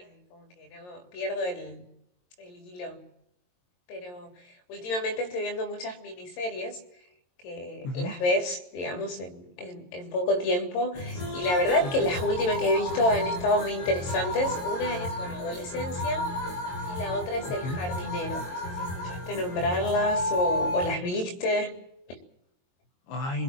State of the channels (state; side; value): late; right; 22 ms